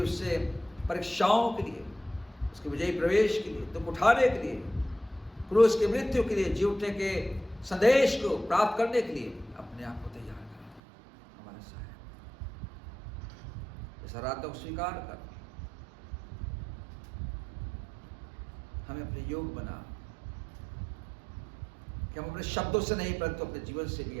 परीक्षाओं के लिए, उसके विजयी प्रवेश के लिए, दुख उठाने के लिए, क्रूस की मृत्यु के लिए, जी उठने के संदेश को प्राप्त करने के लिए अपने आप को तैयार करें। हमारा सहायक इस आराधना को स्वीकार कर हमें अपने योग बना, कि हम अपने शब्दों से नहीं परंतु अपने जीवन से भी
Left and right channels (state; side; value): drops out; left; at 10.8 s